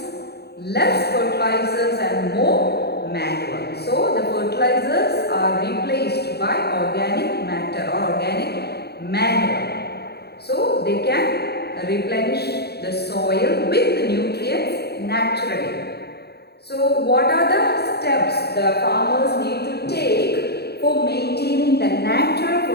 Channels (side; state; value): right; late; 0.47 ms